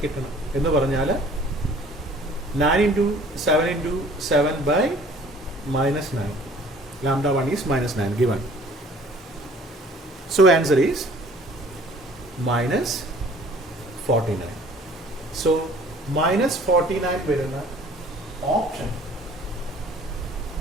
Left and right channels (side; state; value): both; normal; correlation 0.53